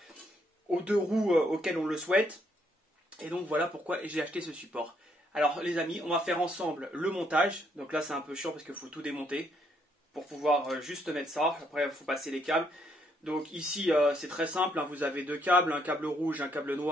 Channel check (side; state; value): both; normal; correlation 0.71